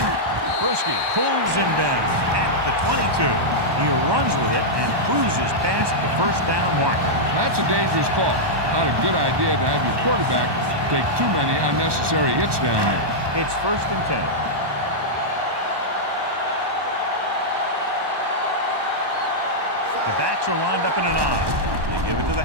Bruschi pulls him down at the 22. He runs with it and cruises past the 1st down marker. That's a dangerous call. Not a good idea to have your quarterback take too many unnecessary hits down there. It's 1st and 10. The backs are lined up in an I. They give it to the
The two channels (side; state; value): left; late; 1.2 ms